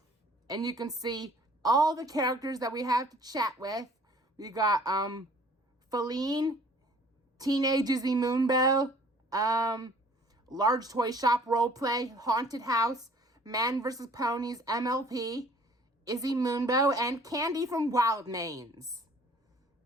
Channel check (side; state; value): both; normal; correlation 0.54